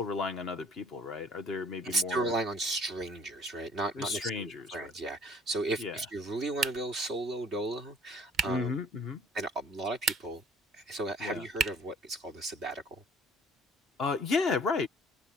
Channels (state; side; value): normal; both; correlation 0.53